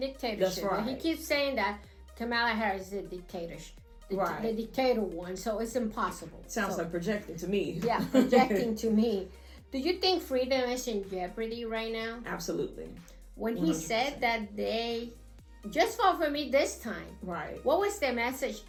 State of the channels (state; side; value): identical; both; correlation 1.00